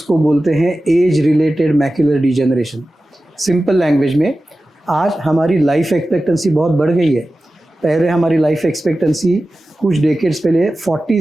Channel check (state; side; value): normal; both; correlation 0.95